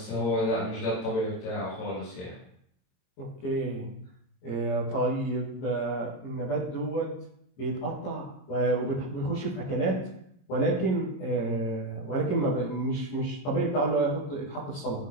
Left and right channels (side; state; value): right; late; 22 ms